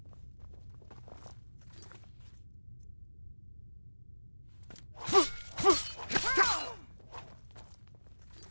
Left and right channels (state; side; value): inverted; both; correlation -1.00